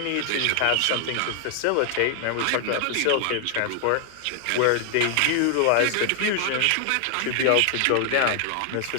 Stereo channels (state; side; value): different; both; correlation 0.00